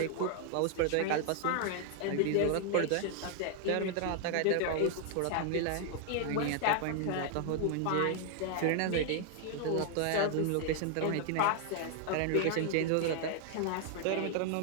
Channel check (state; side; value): different; both; correlation 0.00